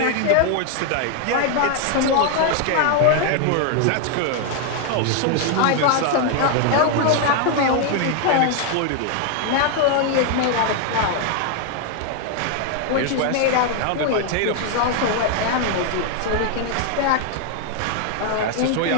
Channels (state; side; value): different; both; correlation 0.00